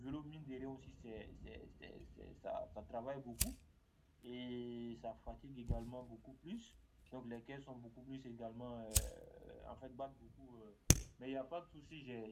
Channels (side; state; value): both; identical; correlation 1.00